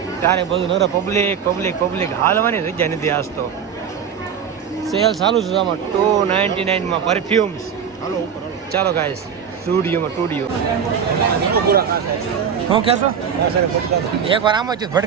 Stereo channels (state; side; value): quieter; left; 7.5 dB